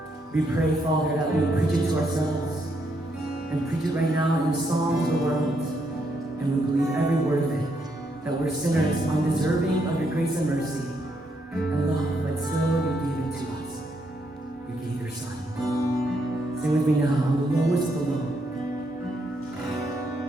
we pray, Father, that we preach it to ourselves and preach it right now in the song to the world. And we believe every word of it, that we're sinners, undeserving of your grace and mercy and love, but still you gave it to us. You gave your Son. Sing with me now, I'm the lowest of the low.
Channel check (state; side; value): normal; both; correlation 0.76